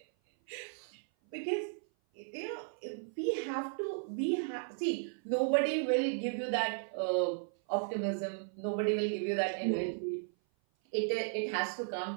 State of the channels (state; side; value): silent; left; 54 dB below the other